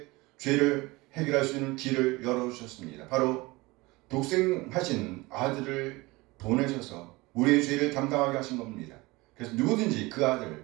죄를 해결할 수 있는 길을 열어주셨습니다. 바로 독생하신 아들을 보내셔서 우리의 죄를 담당하게 하신 겁니다. 그래서 누구든지 그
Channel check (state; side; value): quieter; left; 22.3 dB